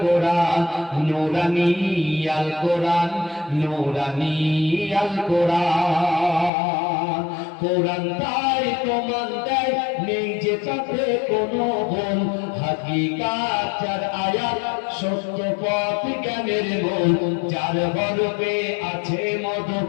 কোরআন, নূরানি আল কোরআন, নূরানি আল কোরআন। কোরআন তাই প্রমাণ দেয় নেই যে তাতে কোনো ভুল, হাকিকাত যার আয়াত সত্য পথ জ্ঞানের মূল, যার গর্বে আছে মধু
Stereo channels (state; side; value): drops out; right; at 6.5 s